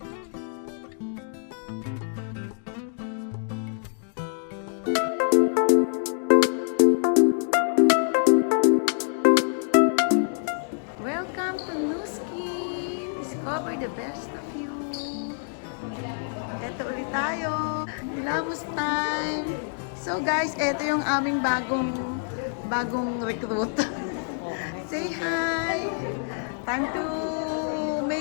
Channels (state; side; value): silent; right; digital silence